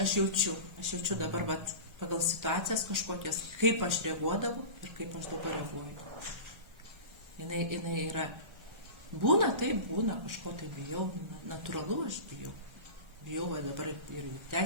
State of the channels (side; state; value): left; late; 1.3 ms